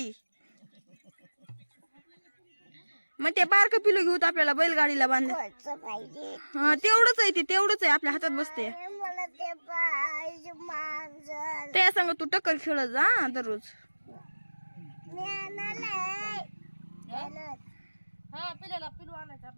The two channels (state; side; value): inverted; both; correlation -1.00